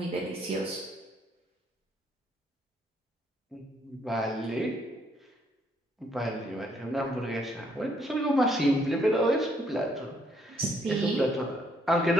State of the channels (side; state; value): both; normal; correlation 0.69